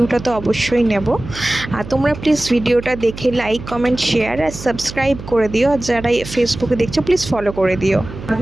তো অবশ্যই নেব। আর তোমরা প্লিজ ভিডিওটা দেখে লাইক, কমেন্ট, শেয়ার আর সাবস্ক্রাইব করে দিও। আর যারা ফেসবুকে দেখছো প্লিজ ফলো করে দিও।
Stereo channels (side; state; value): right; noise; hum, 12 dB below the sound